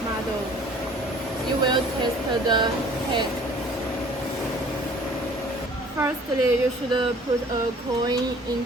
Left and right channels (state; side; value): normal; both; correlation 0.51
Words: model. You will test the head. Firstly, you should put a coin